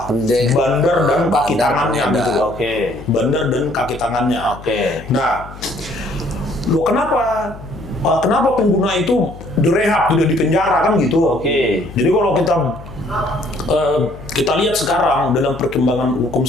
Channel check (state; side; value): noise; left; hum, 15 dB below the sound